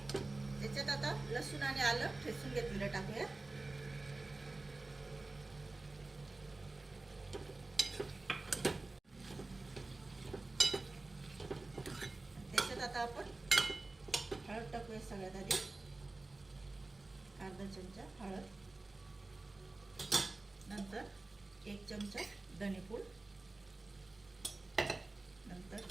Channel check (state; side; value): quieter; left; 3.2 dB